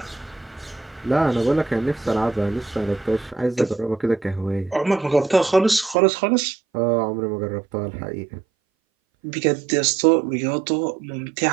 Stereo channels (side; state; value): left; drops out; at 6.0 s